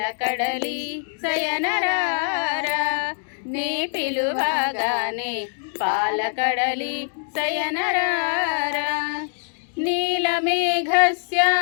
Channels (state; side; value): silent; right; digital silence